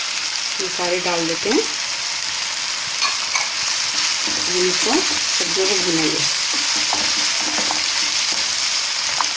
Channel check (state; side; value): identical; both; correlation 1.00